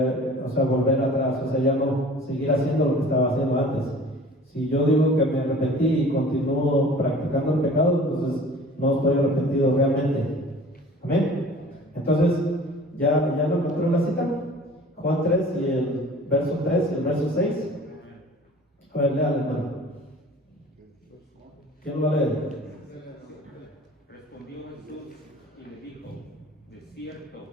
atrás, o sea, ya no seguir haciendo lo que estaba haciendo antes. Si yo digo que me arrepentí y continúo practicando el pecado, entonces no estoy arrepentido realmente. Amén. Entonces, ¿ya lo encontró la cita? Juan 3 y el verso 3 y el verso 6. A ver, léale, hermano. ¿Quién lo va a leer? Respondió Jesús y le dijo, de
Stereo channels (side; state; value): both; normal; correlation 0.46